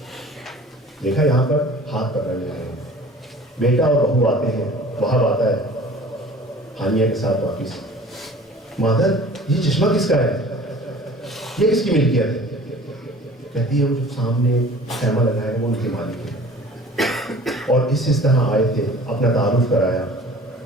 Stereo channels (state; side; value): normal; both; correlation 0.46